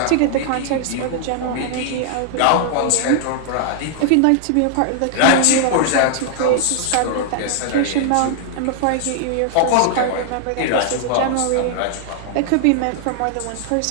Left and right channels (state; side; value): different; both; correlation 0.00